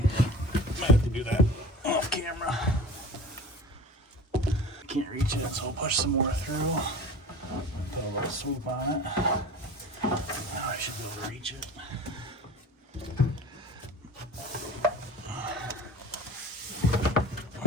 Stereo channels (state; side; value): normal; both; correlation 0.38